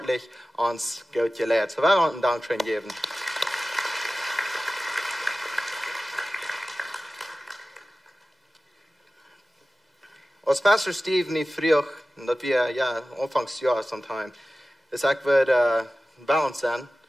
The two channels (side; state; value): both; normal; correlation 0.96